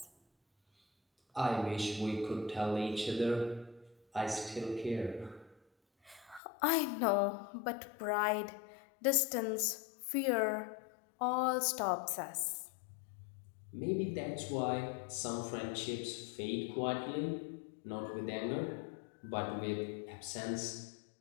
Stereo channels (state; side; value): drops out; right; at 6.4 s